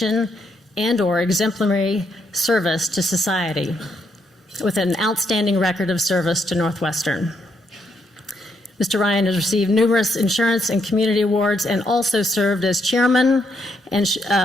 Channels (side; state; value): both; normal; correlation 0.76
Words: and/or exemplary service to society with an outstanding record of service to Northwestern. Mr. Ryan has received numerous insurance and community awards and also served as chairman